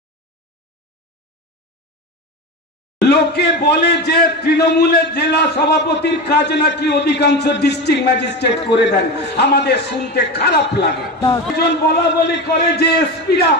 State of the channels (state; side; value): normal; both; correlation 0.23